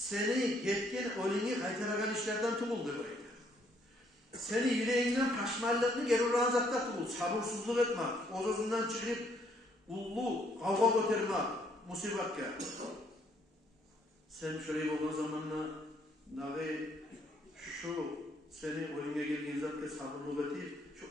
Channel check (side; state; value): both; normal; correlation 0.68